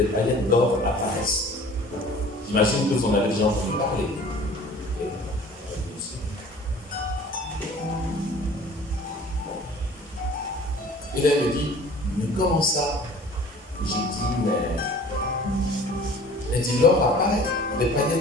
paillettes d'or apparaissent. J'imagine que vous en avez déjà entendu parler. Et là, elle me dit, mais comment ça? J'ai dit, mais... Elle dit, l'or apparaît, les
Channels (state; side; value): normal; both; correlation 0.47